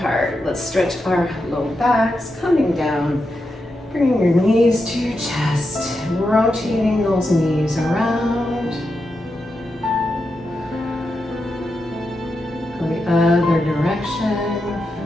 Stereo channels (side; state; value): both; normal; correlation 0.87